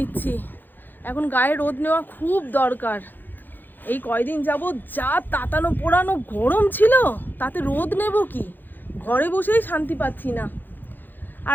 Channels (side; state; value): right; late; 0.090 ms